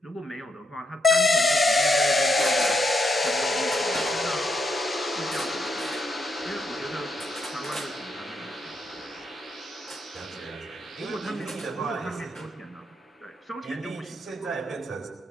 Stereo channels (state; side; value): normal; both; correlation 0.79